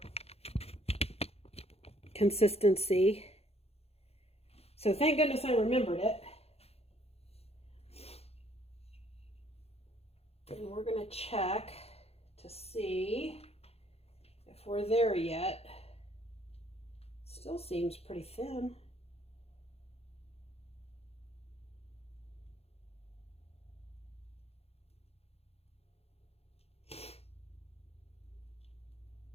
consistency. So thank goodness I remembered it. And we're going to check to see if we're there yet. Still seems pretty thin.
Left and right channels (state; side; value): late; right; 0.29 ms